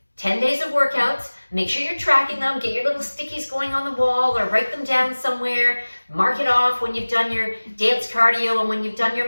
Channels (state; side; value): inverted; both; correlation -1.00